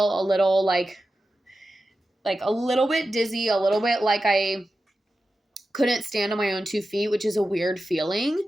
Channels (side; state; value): both; normal; correlation 0.92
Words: a little like a little bit dizzy, a little bit like I couldn't stand on my own 2 feet, which is a weird feeling.